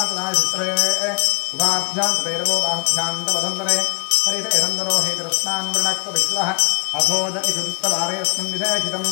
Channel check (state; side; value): quieter; right; 31.5 dB